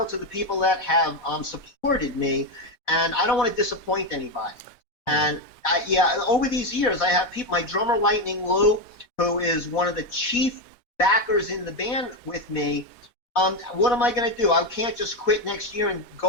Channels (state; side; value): late; right; 4.1 ms